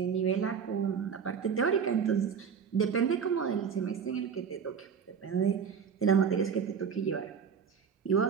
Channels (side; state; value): left; quieter; 6.8 dB